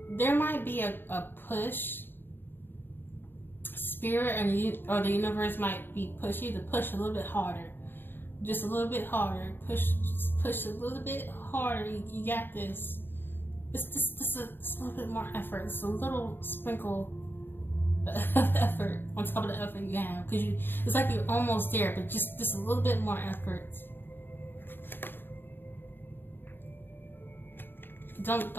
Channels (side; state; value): right; late; 0.098 ms